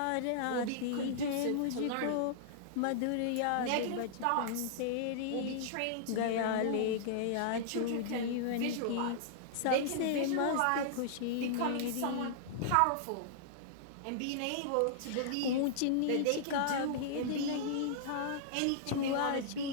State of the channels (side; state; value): both; different; correlation -0.02